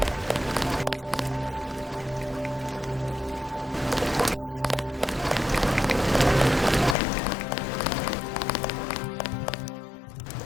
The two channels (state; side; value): drops out; right; at 7.0 s